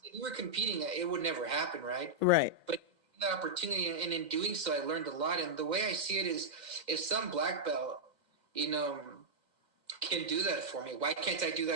we were competing, it would never happen, right? Right. But the opportunity, and in doing so, I learned a lot. And the way I see it is, if some black belt, you know, can do that for me, why can't I do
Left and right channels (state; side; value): late; left; 2.1 ms